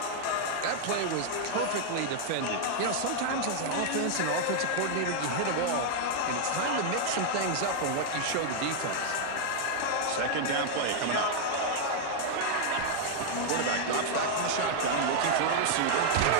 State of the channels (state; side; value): different; both; correlation 0.00